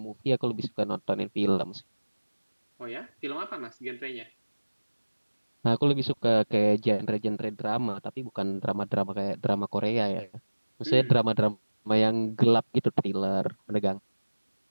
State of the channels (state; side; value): inverted; both; correlation -1.00